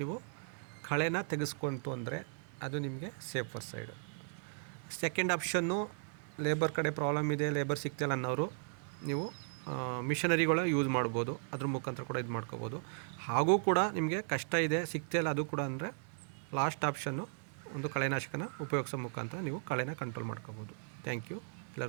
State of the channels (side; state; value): left; silent; 53 dB below the other